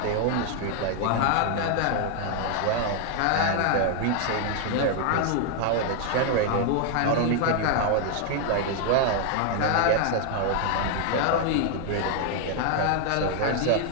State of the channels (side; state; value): both; different; correlation 0.00